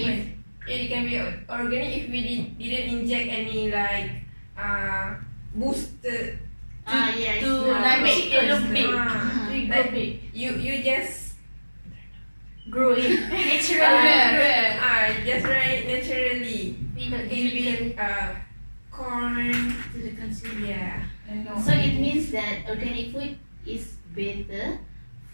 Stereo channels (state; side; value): inverted; both; correlation -1.00